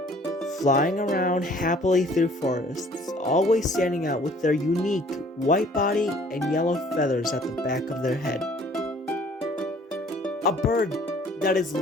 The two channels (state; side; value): normal; both; correlation 0.56